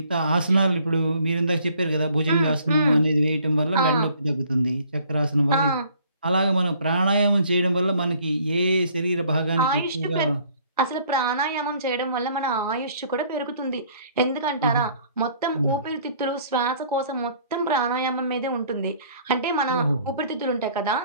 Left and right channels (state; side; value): inverted; both; correlation -0.58